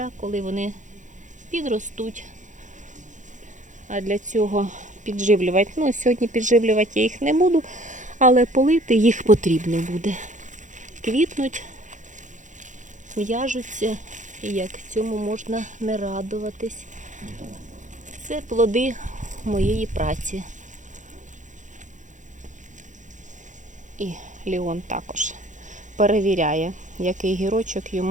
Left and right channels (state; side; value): late; left; 0.36 ms